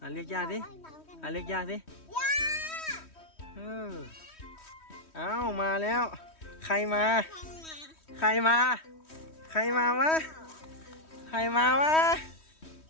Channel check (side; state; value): right; late; 3.1 ms